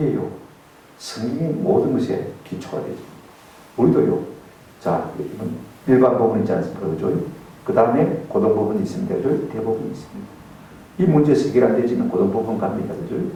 성경의 모든 것에 기초가 되죠. 우리도요, 자, 이건 일반 법은 있지 않습니까? 그죠? 그 다음에 고등법원이 있습니다. 그죠? 대법원이 있습니다. 이 문제에서 해결 안 되지만 고등법원 갑니다. 그죠?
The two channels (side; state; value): both; identical; correlation 1.00